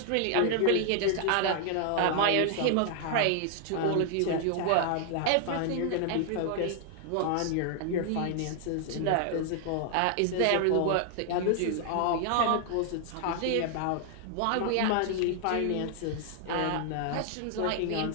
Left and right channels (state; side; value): different; both; correlation 0.00